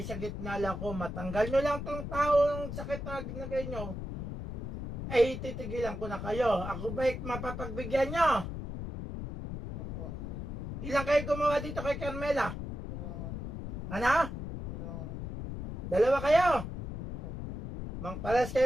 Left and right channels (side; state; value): left; noise; rumble, 6 dB below the sound